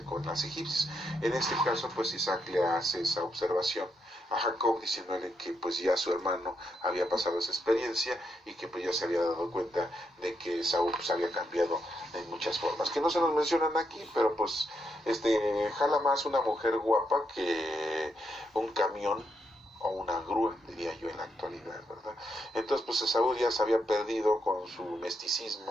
con las egipcias. En este caso pues Isaac le hace esa observación a Jacob, diciéndole que pues ya su hermano había pasado esa experiencia y que pues ya se había dado cuenta de que Esaú pues había cambiado en muchas formas, que no se nos mencionan aquí, pero pues jala más una mujer guapa que un camión o una grúa, diría yo en la actualidad, ¿verdad? Entonces pues Esaú ya se había perdido con su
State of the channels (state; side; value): normal; both; correlation 0.80